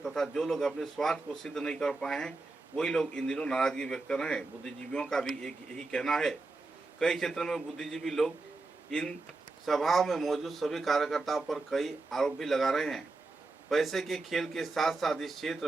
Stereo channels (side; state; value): left; quieter; 3.4 dB